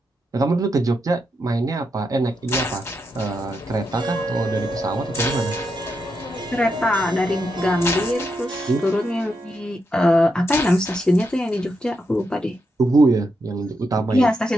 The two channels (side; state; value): both; normal; correlation 0.83